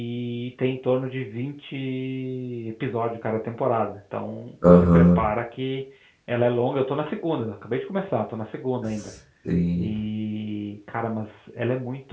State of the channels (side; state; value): both; identical; correlation 1.00